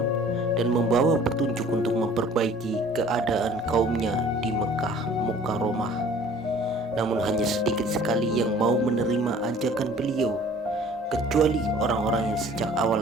dan membawa petunjuk untuk memperbaiki keadaan kaumnya di Mekah Mukarramah. Namun hanya sedikit sekali yang mau menerima ajakan beliau, kecuali orang-orang yang sejak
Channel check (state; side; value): normal; both; correlation 0.51